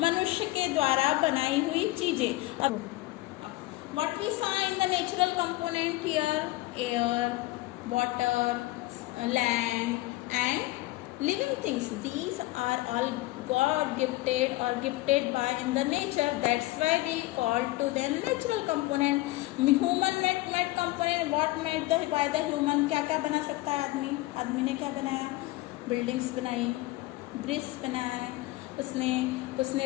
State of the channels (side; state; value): right; quieter; 19.0 dB